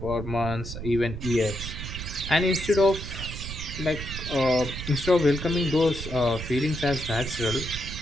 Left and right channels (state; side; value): noise; right; rumble, 8 dB below the sound